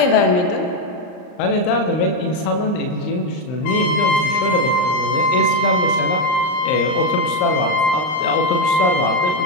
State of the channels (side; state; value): right; late; 39 ms